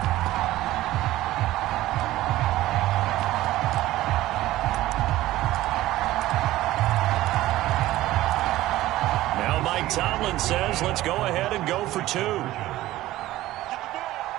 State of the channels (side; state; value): left; quieter; 16.0 dB